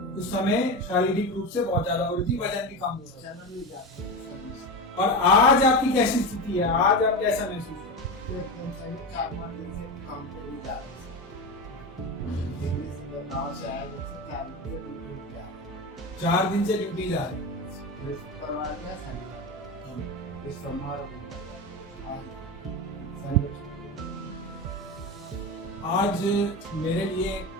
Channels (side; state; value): both; normal; correlation 0.21